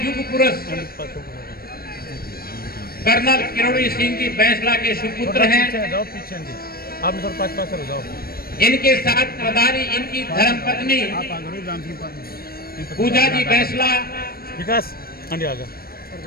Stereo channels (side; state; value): right; late; 0.44 ms